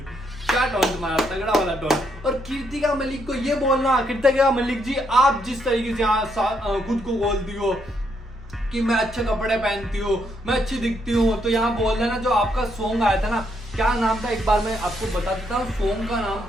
क्या टॉन्ट मारा, तगड़ा वाला टॉन्ट। और कृतिका मलिक को ये बोलना, कृतिका मलिक जी आप जिस तरीके से यहाँ खुद को बोलती हो कि मैं अच्छे कपड़े पहनती हूँ, मैं अच्छी दिखती हूँ, तो यहाँ बोल देना जो आपका सॉन्ग आया था ना, क्या नाम था एक बार मैं आपको बता देता हूँ, सॉन्ग का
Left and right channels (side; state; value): both; normal; correlation 0.75